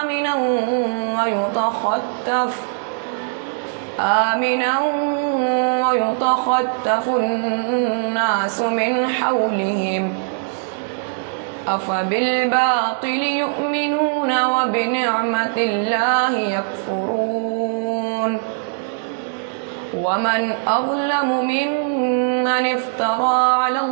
آمنا ويتخطف الناس من حولهم أفبالباطل يؤمنون وبنعمة الله يكفرون. ومن أظلم ممن افترى على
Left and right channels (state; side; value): silent; left; 62 dB below the other